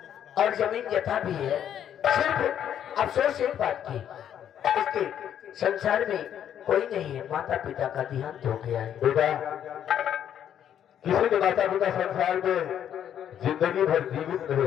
और जमीन जथा भी है। सिर्फ अफसोस एक बात की, इसके संसार में कोई नहीं है, माता पिता का देहांत हो गया है। बेटा, किसी के माता पिता संसार में जिंदगी भर जीवित नहीं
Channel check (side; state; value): right; quieter; 9.7 dB